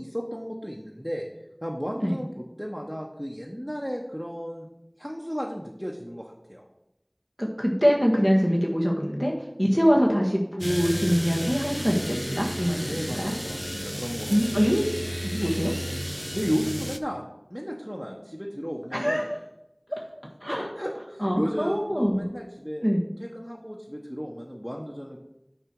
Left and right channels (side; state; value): both; identical; correlation 1.00